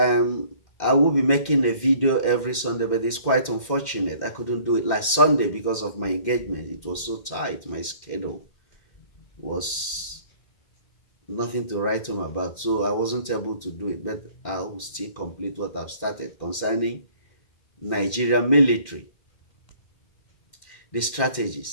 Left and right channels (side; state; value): right; late; 2.1 ms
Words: I will be making a video every Sunday, but it's quite unfortunate. I couldn't do it last Sunday because of my engagement. It was so tight. My schedule was nothing to write home about, so I wasn't able to do it, but I will still complete what I've started concerning Nigerian military, the